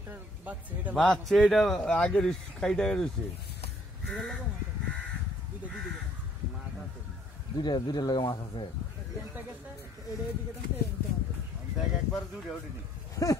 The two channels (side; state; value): both; normal; correlation 0.63